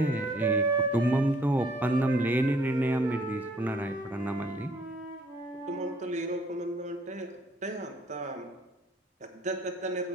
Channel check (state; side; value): normal; both; correlation 0.61